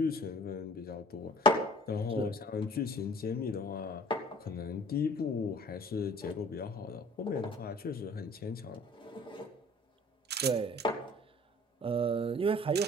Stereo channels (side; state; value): both; normal; correlation 0.50